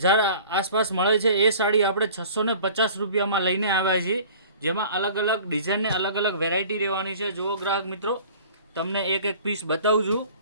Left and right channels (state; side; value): inverted; both; correlation -0.46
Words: આસપાસ મળે છે. એ સાડી આપણે 650 રૂપિયામાં લઈને આવ્યા છીએ, જેમાં અલગ અલગ ડિઝાઇનને અલગ અલગ વેરાયટી રહેવાની છે. જુઓ ગ્રાહક મિત્રો, તમને એક એક પીસ બતાવું છું.